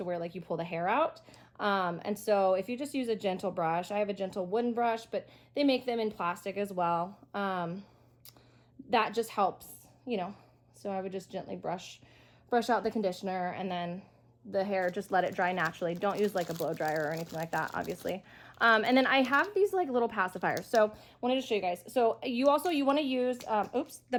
where like you pull the hair out. And so if you just use a gentle brush, I have a gentle wooden brush, but they make them in plastic as well. That just helps, you know. So I would just gently brush out the conditioner, and then the hair, just let it dry naturally. Don't use like a blow dryer or anything like that, obviously. And then I have these like little pacifiers. So I wanted to show you guys. So you want to use, the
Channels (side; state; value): both; identical; correlation 1.00